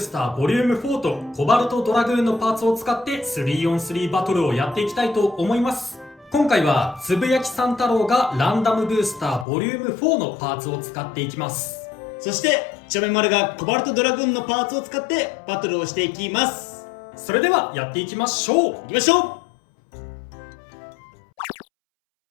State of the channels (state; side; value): drops out; right; at 9.5 s